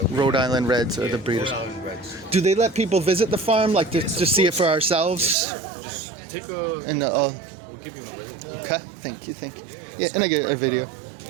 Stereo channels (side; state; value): left; drops out; at 5.4 s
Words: we Rhode Island Reds are the breeders. Rhode Island Reds. Do they let people visit the farm, like to see it for ourselves? Just take a. And We'll give you one right here. okay, thank you. Yeah, and I get a video.